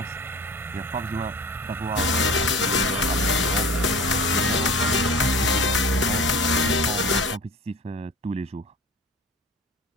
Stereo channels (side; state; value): both; normal; correlation 0.40